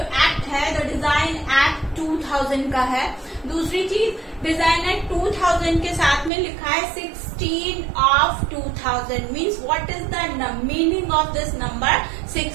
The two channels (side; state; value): left; drops out; at 6.3 s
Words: है द डिजाइन एक्ट 2000 का है। दूसरी चीज डिजाइन एक्ट 2000 के साथ में लिखा है 16 of 2000 means what is the meaning of this number